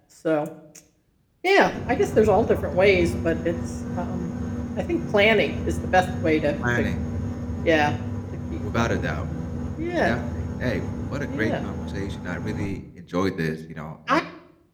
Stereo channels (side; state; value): both; identical; correlation 1.00